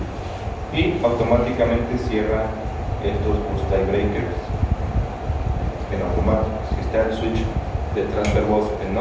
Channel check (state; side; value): identical; both; correlation 1.00